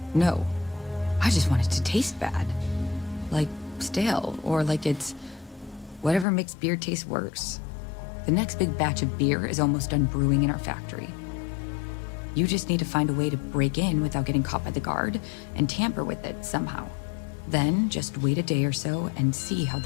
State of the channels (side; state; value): right; drops out; at 6.2 s